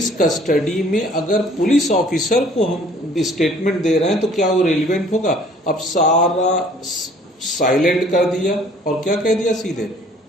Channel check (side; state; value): both; normal; correlation 0.55